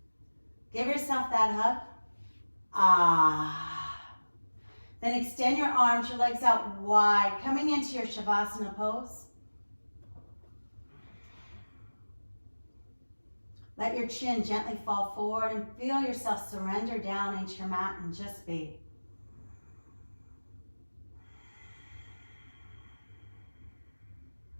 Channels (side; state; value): both; inverted; correlation -1.00